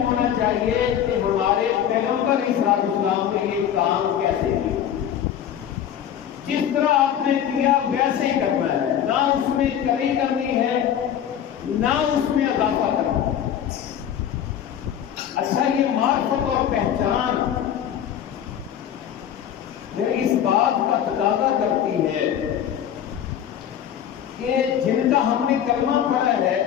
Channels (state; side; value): quieter; right; 9.8 dB